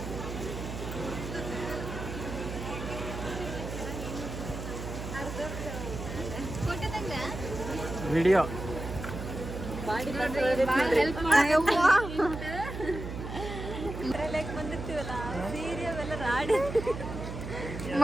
ವಿಡಿಯೋ ಬಂದಿರ್ತೀವಲ್ಲ ಸೀರೆ ಅವೆಲ್ಲ ರಾಡಿ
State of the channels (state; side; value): noise; right; hum, 7 dB below the sound